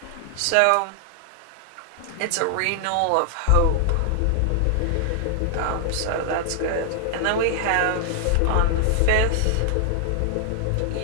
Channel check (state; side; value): different; both; correlation 0.00